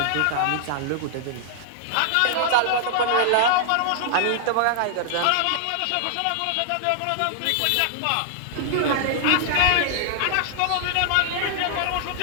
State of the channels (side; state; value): both; different; correlation -0.01